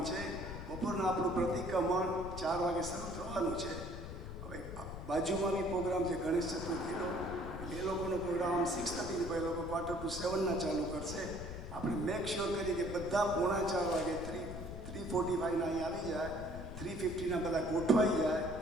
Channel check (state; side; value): noise; left; rumble, 9 dB below the sound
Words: છે. બપોરના આપણું પ્રતિક્રમણ 4 વાગે શરૂ થવાનું છે. હવે બાજુમાં બી પ્રોગ્રામ છે ગણેશ ચતુર્થીનો, એ લોકોનો પ્રોગ્રામ 6:30 પછી લોકો 7:45 ચાલુ કરશે. આપણે મેક શ્યોર કરીએ કે બધા 3:45 વાગે 3:45 અહીંયા આવી જાય, 3:50 બધા ગોઠવાઈ જાય